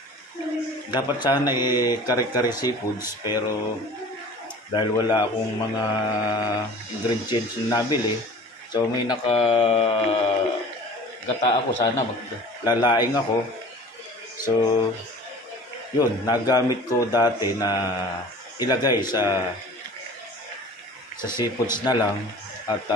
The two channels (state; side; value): normal; both; correlation 0.43